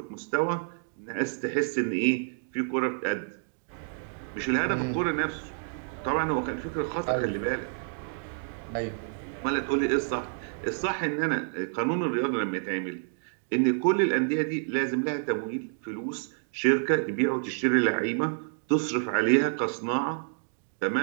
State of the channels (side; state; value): left; silent; digital silence